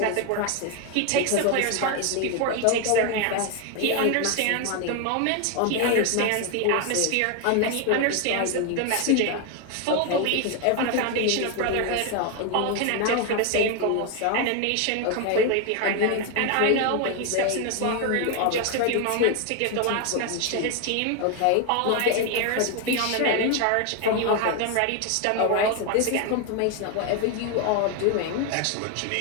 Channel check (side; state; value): both; different; correlation 0.01